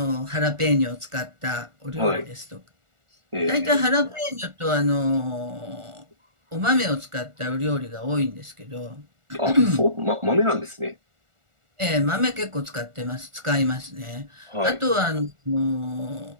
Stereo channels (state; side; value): late; left; 1.4 ms